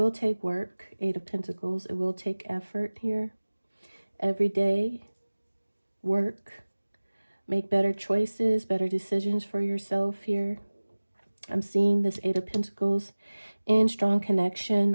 take work, Eight of Pentacles. It will take effort here. Every day, work. Make better choices, better decisions for yourself here. I'm seeing this Eight of Pentacles in strong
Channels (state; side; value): inverted; both; correlation -1.00